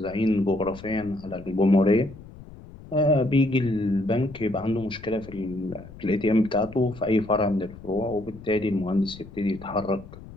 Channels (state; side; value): noise; left; rumble, 17 dB below the sound